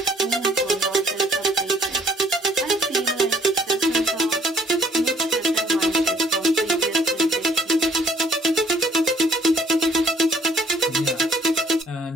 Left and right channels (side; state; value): both; normal; correlation 0.61